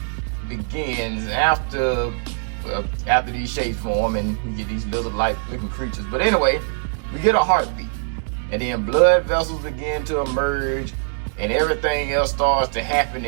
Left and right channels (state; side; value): silent; left; digital silence